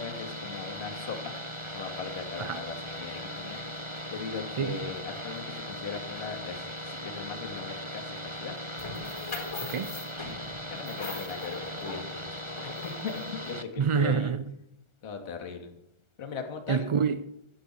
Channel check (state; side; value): late; left; 1.4 ms